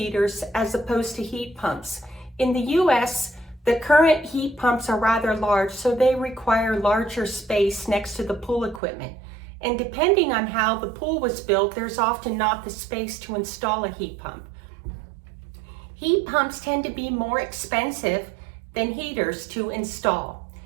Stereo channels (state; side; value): drops out; left; at 8.8 s